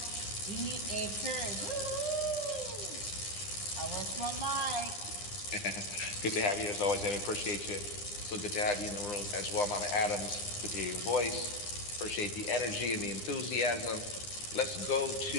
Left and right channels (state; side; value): late; right; 9.8 ms